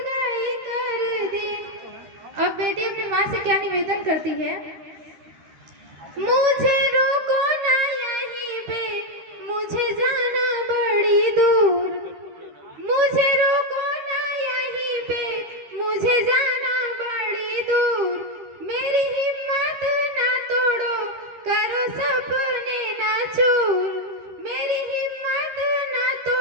कर दी। अब बेटी अपनी माँ से क्या निवेदन करती है? मुझे रोको ना यहीं पे, मुझे जाना बड़ी दूर। मुझे रोको ना यहीं पे, मुझे जाना बड़ी दूर। मेरी हिम्मत ना तोड़ो, करो सपने ना चूर। मेरी हिम्मत ना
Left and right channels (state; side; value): late; left; 13 ms